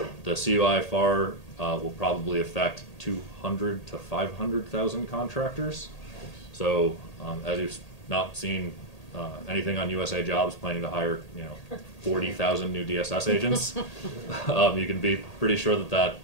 The CUI FAR will probably affect 200 to 500,000 contractors. So as you've not seen anything on USA Jobs planning to hire 40,000 new DSS agents, you can be pretty sure that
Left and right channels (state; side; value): late; right; 1.8 ms